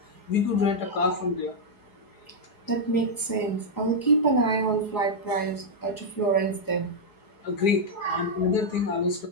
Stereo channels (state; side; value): late; right; 4.8 ms